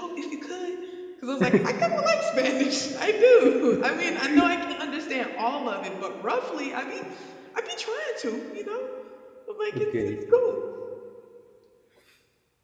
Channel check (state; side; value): identical; both; correlation 1.00